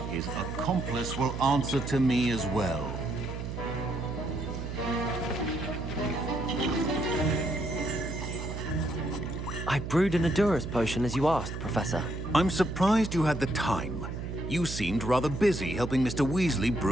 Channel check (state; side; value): noise; right; hum, 6 dB below the sound